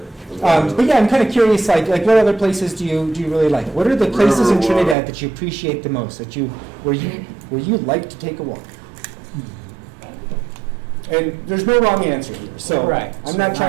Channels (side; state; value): left; drops out; at 5.0 s